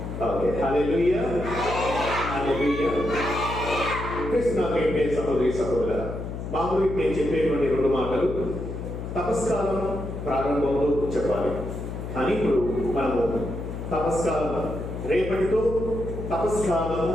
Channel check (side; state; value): left; noise; hum, 7 dB below the sound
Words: ఓకే. హల్లెలూయా. హల్లెలూయా. కృష్ణకే సహోదరి సహోదరుల, మామూలు నేను చెప్పేటువంటి 2 మాటలు తపస్కాలం ప్రారంభంలో చెప్పాలి, కానీ ఇప్పుడు మనము తపస్కాలం రేపటితో